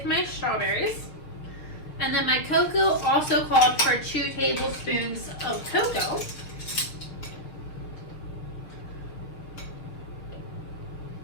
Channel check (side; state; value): right; late; 6.8 ms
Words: my strawberries. And then my cocoa also called for 2 tablespoons of cocoa.